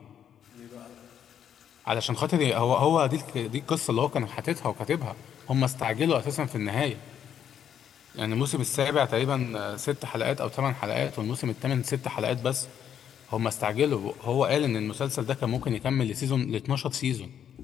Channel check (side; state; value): right; quieter; 9.0 dB